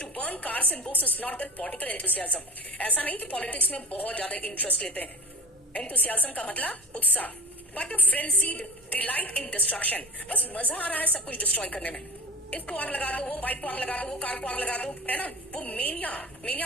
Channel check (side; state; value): both; normal; correlation 0.35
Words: to burn cars and books is not their political enthusiasm. ऐसा नहीं कि पॉलिटिक्स में बहुत ज्यादा इंटरेस्ट लेते हैं, enthusiasm का मतलब उत्साह, but a frenzied delight in destruction. बस मजा आ रहा है सब कुछ डिस्ट्रॉय करने में। इसको आग लगा दो, वो बाइक को आग लगा दो, वो कार को आग लगा दो, है ना? वो मेनिया,